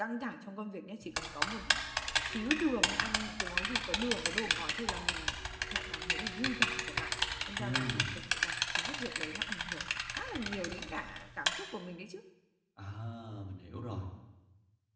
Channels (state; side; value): identical; both; correlation 1.00